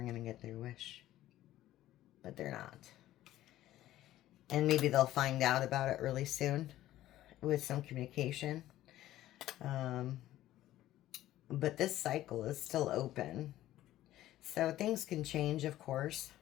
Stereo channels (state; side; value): quieter; right; 14.3 dB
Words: going to get their wish. But they're not. And maybe they'll find out about it really soon with some communication. But this cycle is still open. So things can change, of course,